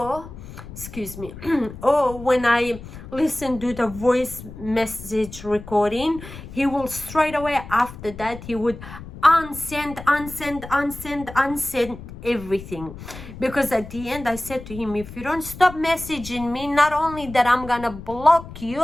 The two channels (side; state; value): left; noise; rumble, 14 dB below the sound